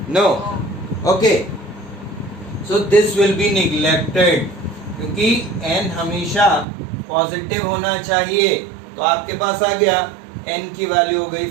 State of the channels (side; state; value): left; drops out; at 6.7 s